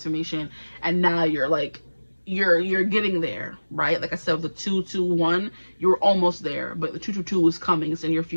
and now you're like, you're getting there, right? Like I said, with the 221, you're almost there, but the 222 is coming. It's in your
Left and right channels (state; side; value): inverted; both; correlation -1.00